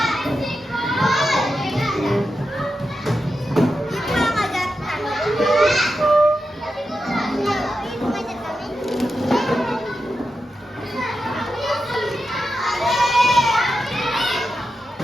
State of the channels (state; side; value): normal; both; correlation 0.89